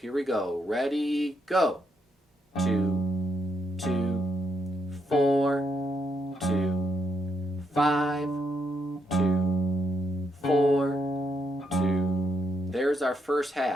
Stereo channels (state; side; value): normal; both; correlation 0.78